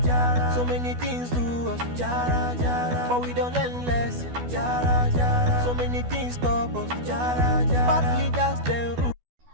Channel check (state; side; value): late; left; 12 ms